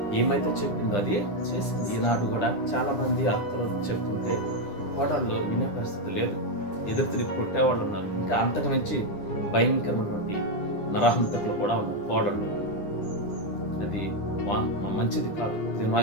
ఏమైతే చెప్పిందో అది చేసింది. ఈనాడు కూడా చాలా మంది అత్తలు చెప్తుంటే కోడళ్ళు వినే పరిస్థితి లేదు. ఎదురు తిరిగి కొట్టేవాళ్ళు ఉన్నారు. ఇంకా అంతకు మించి భయంకరమైనటువంటి నరహంతకులు కూడా ఉన్నారు కోడళ్ళు. అది మంచిది కాదు. దేవుని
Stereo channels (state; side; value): late; right; 10 ms